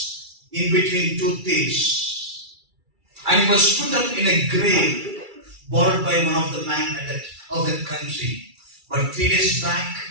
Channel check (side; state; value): left; late; 2.3 ms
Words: in between two thieves. And he was put up in a grave borrowed by one of the men of that country. But 3 days back,